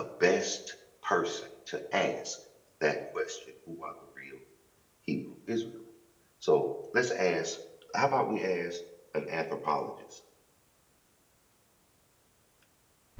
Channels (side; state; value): both; identical; correlation 1.00